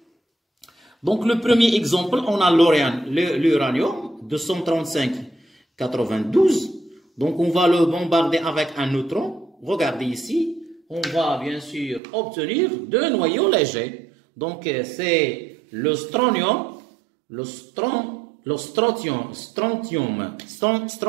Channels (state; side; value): drops out; left; at 12.0 s